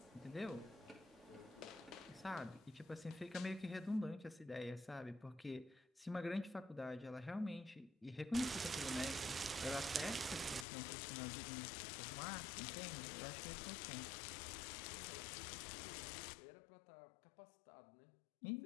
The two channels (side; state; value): right; drops out; at 10.7 s